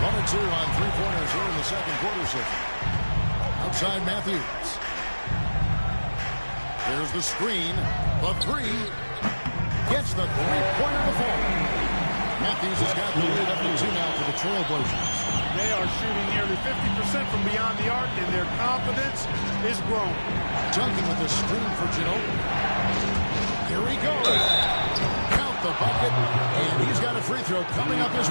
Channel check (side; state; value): both; inverted; correlation -1.00